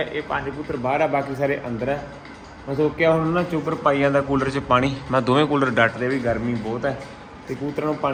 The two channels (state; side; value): identical; both; correlation 1.00